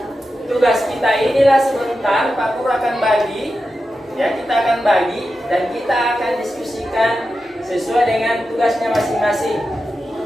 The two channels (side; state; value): both; normal; correlation 0.90